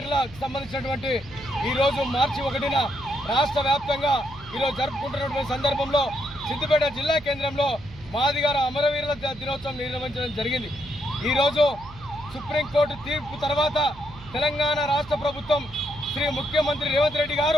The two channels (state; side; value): noise; right; hum, 19 dB below the sound